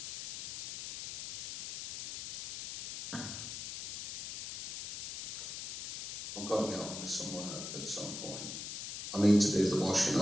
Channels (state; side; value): noise; left; hiss, 8 dB below the sound